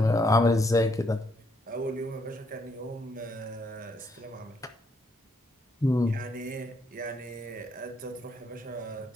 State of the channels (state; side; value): normal; both; correlation 0.73